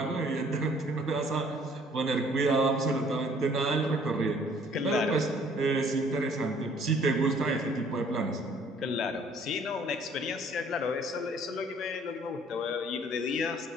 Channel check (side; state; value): both; normal; correlation 0.58